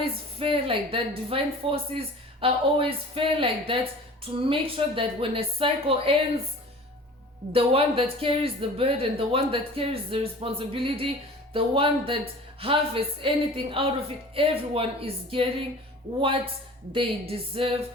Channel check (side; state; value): both; normal; correlation 0.42